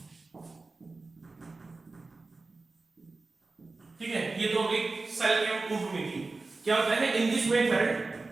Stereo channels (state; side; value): quieter; left; 3.6 dB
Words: ठीक है, ये तो एक सेल के कुंभ में थी। क्या होता है in this method